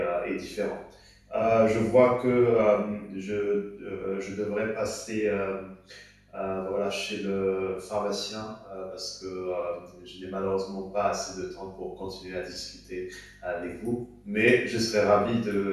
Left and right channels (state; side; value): identical; both; correlation 1.00